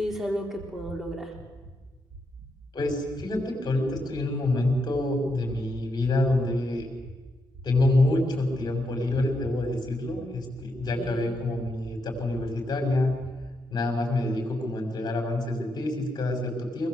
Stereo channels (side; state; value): both; normal; correlation 0.81